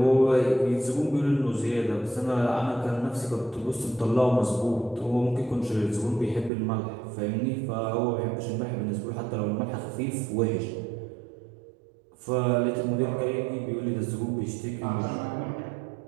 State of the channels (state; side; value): drops out; left; at 6.5 s